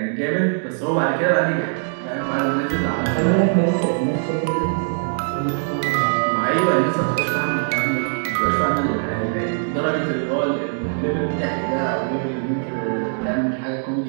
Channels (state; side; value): silent; left; digital silence